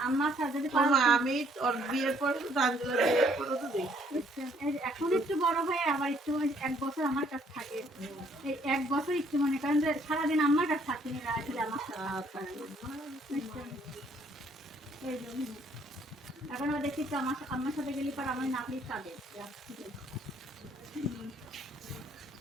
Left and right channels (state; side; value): normal; both; correlation 0.65